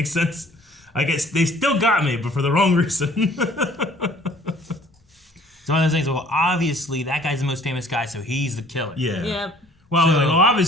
sense? I guess they still got me, but for the wrong reason. It's one of those things, well, obviously, that guy's the most famous guy, so he's the killer. Yeah. Yep. Well,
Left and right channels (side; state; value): both; normal; correlation 0.56